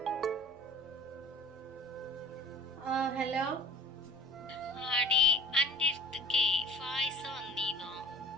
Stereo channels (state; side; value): normal; both; correlation 0.45